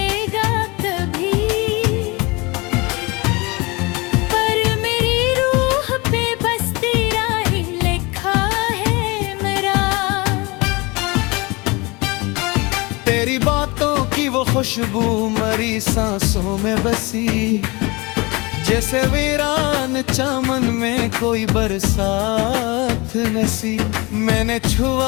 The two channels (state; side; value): quieter; right; 25.4 dB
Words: कभी, पर मेरी रूह पे बस तेरा ही लिखा है मेरा। तेरी बातों की वो खुशबू मरी सांसों में बसी, जैसे वीरान चमन में कोई बरसात नसी। मैंने